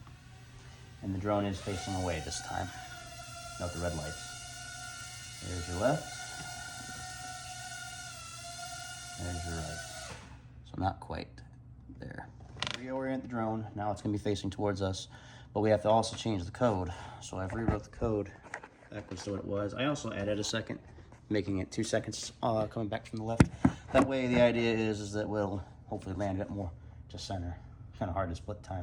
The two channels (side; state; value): both; identical; correlation 1.00